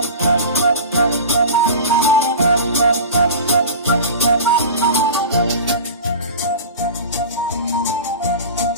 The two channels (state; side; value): inverted; both; correlation -0.34